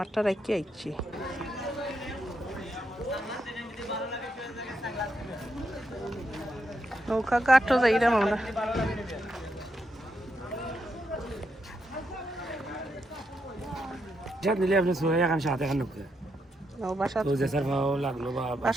রাখি আইছি। নৌকা ঘাটও যাইলাম আমরা। যা নিলে আপনি সোয়া এখন সাথে এখন লোক বাসা তো জেসার ভাও লাগলো বা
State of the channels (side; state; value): both; normal; correlation 0.81